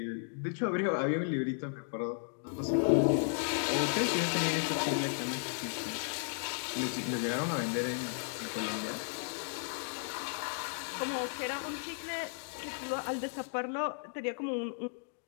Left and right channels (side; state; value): right; silent; digital silence